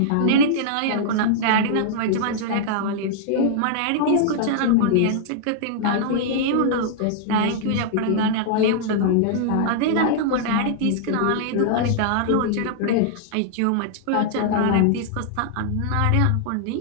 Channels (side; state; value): both; different; correlation -0.01